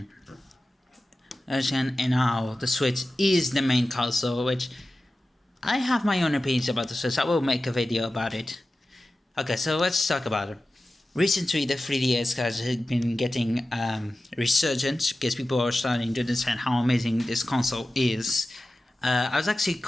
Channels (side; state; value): both; normal; correlation 0.95